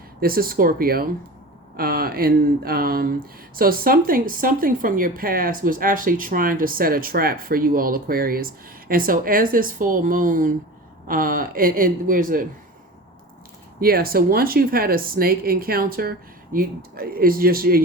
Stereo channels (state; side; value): normal; both; correlation 0.34